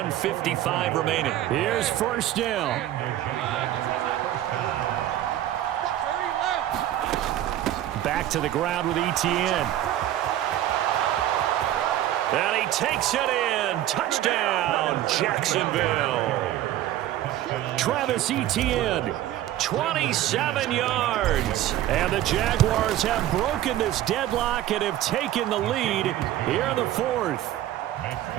remaining. Here's 1st down. Back to the ground with ETN. And he takes it in. Touchdown, Jacksonville. Travis Etienne, 27 yards. And the Jaguars have broken this deadlock and have taken the lead here in the 4th.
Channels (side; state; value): left; quieter; 13.1 dB